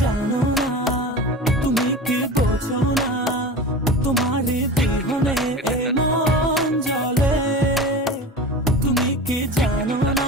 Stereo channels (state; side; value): normal; both; correlation 0.32